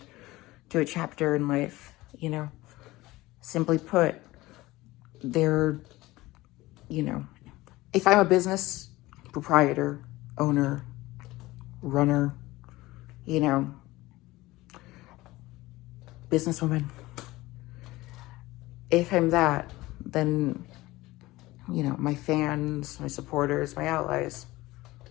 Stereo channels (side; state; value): right; quieter; 18.9 dB